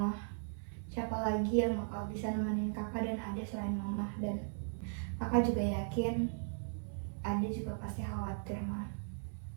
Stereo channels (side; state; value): left; silent; 53 dB below the other